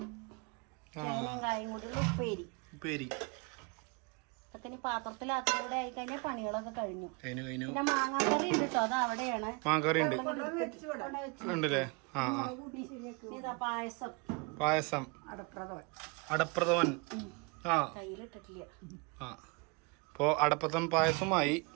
കായും കൂടി ഉപ്പേരി. അപ്പത്തിന് പാത്രത്തിലാക്കിലൂടെ ആയി കഴിഞ്ഞാൽ പണികളൊക്കെ കഴിഞ്ഞു. പിന്നെ മാങ്ങാക്കറി ഉണ്ട് കേട്ടോ, അത് അവിടെയാണ്. ഇതാ പായസം അടപ്രഥമൻ. കയ്യിലിട്ടിട്ടില്ല. അപ്പോ അടപ്രഥമൻ പായസമായി.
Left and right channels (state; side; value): quieter; left; 30.7 dB